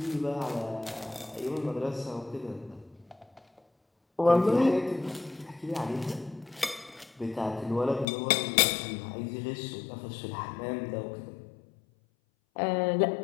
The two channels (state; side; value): drops out; right; at 8.1 s